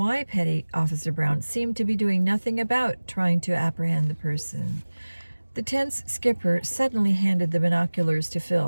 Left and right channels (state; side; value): inverted; both; correlation -1.00